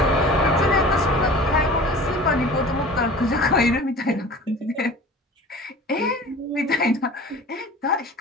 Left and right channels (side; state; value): both; normal; correlation 0.41